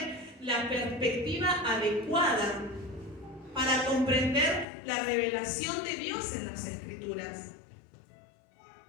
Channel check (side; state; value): right; drops out; at 4.7 s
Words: la perspectiva adecuada para comprender la revelación de Dios en las Escrituras.